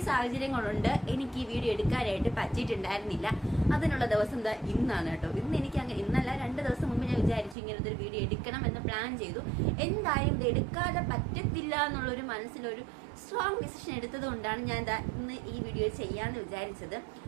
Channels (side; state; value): left; drops out; at 7.6 s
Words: സാഹചര്യങ്ങളുണ്ട് എനിക്ക് ഈ വീഡിയോ എടുക്കാനായിട്ട് പറ്റിയിട്ടുണ്ടായിരുന്നില്ല. അതിനുള്ള ദിവസം എന്താ ഇന്നാണ് കേട്ടോ. ഇന്നല്ല 2 ദിവസം മുമ്പ് ഞാൻ വിചാരിച്ചു ഇങ്ങനത്തെ ഒരു വീഡിയോ എടുക്കണം എന്ന് പ്ലാൻ ചെയ്തു. എന്തായാലും ഇത് എടുക്കാതെ പറ്റത്തില്ല എന്നുള്ളൊരു മനസ്സിലൊരു സ്ട്രോങ് ഡിസിഷൻ എടുത്തത് കൊണ്ടാണ് ഞാൻ ഇന്ന് ഈ വീഡിയോ ചെയ്യാന്ന് വിചാരിച്ചത്.